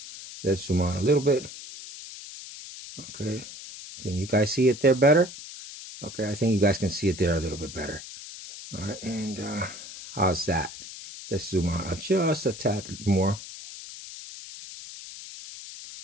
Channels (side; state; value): left; noise; hiss, 13 dB below the sound